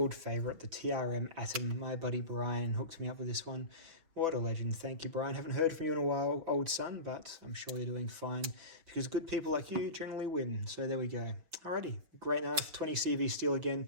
favourite, the TRM Atom. My buddy Brian hooked me up with this one. What a legend. Thank you, Brian. Haven't heard from you in a while, old son, but I'm sure you're doing fine, because good people like you generally win. So there we go. Alrighty, great knife. 20 CV steel again,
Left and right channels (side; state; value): left; late; 6.1 ms